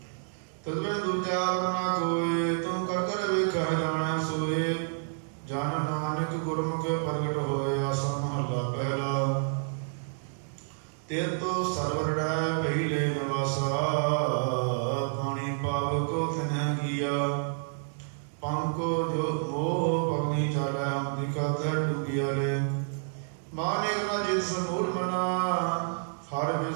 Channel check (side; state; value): left; silent; digital silence